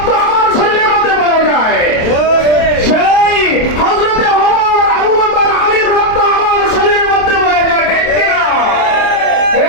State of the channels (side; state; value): right; late; 27 ms